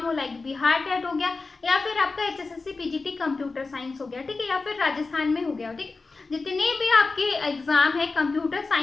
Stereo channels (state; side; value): quieter; right; 3.9 dB